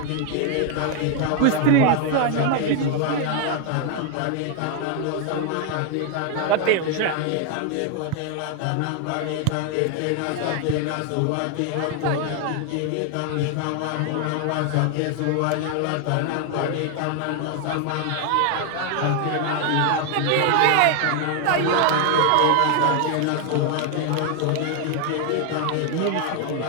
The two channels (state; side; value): different; both; correlation 0.00